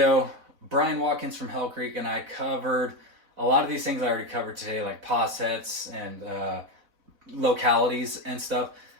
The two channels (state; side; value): late; left; 4.0 ms